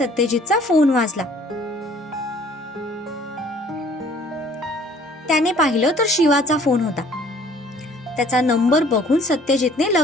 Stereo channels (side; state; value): both; normal; correlation 0.55